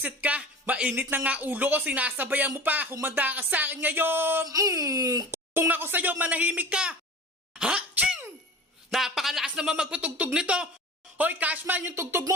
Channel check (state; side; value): normal; both; correlation 0.36